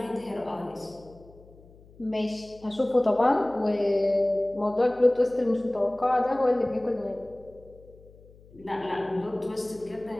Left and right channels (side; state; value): left; noise; hum, 24 dB below the sound